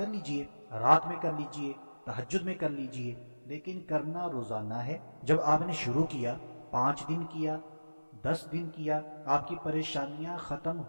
لیجئے، رات میں کر لیجئے، تہجد میں کر لیجئے، لیکن کرنا روزانہ ہے۔ جب آپ نے شروع کیا، 5 دن کیا، 10 دن کیا، آپ کی پریشانیاں ختم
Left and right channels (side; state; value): both; inverted; correlation -1.00